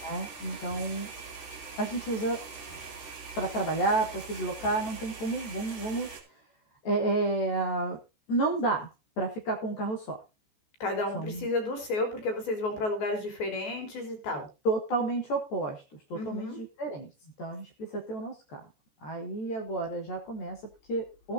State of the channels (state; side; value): late; right; 13 ms